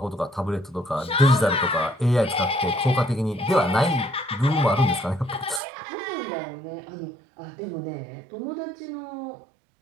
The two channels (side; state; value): left; drops out; at 5.6 s